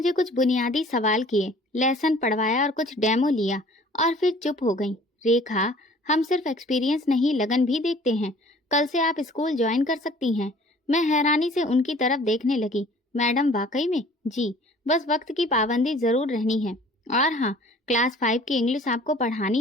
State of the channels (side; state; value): both; normal; correlation 0.51